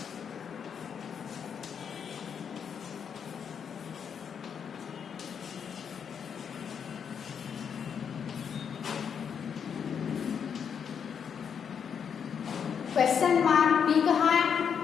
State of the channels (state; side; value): quieter; right; 7.3 dB